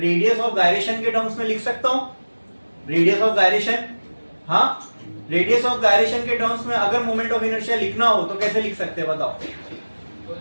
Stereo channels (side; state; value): both; inverted; correlation -1.00